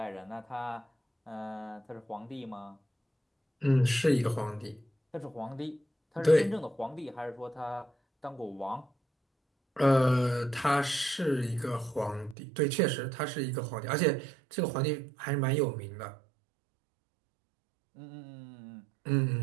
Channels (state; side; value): drops out; left; at 12.4 s